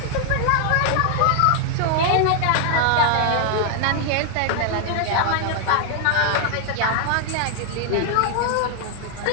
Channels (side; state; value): both; different; correlation 0.00